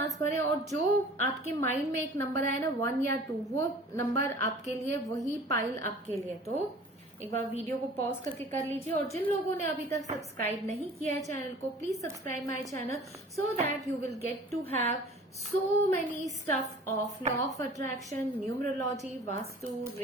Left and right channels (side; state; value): both; normal; correlation 0.46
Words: भरें, और जो आपके माइंड में एक नंबर आए ना 1 या 2, वो नंबर आपके लिए, वही पाइल आपके लिए। तो एक बार वीडियो को पॉज करके कर लीजिए, और जिन लोगों ने अभी तक सब्सक्राइब नहीं किया है चैनल को, please subscribe my channel so that you will get to have so many stuff of law of attraction, numerology, vastu,